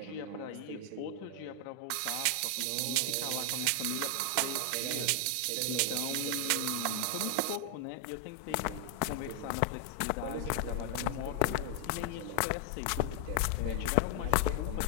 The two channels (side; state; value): both; different; correlation 0.00